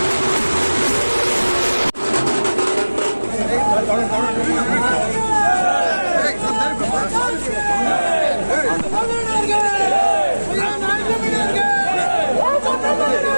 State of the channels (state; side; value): inverted; both; correlation -1.00